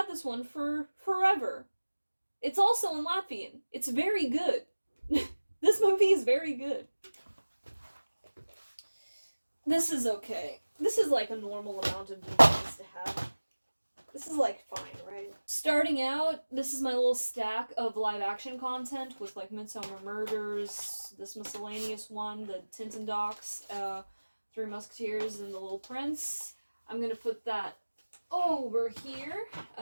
this one for forever. It's also in Latvian. It's very good. This movie is very good. This is okay. This is like a normal amount of DVDs to have. This is like fine, right? Starting out, this is my little stack of live action content with like Midsummer Murders, this miscellaneous one, the Tintin docs, Three Musketeers, and The Little Prince. I'm gonna put that over here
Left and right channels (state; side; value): inverted; both; correlation -1.00